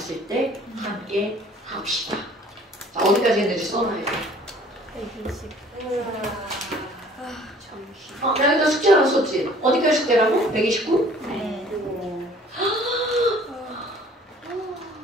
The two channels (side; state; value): both; normal; correlation 0.53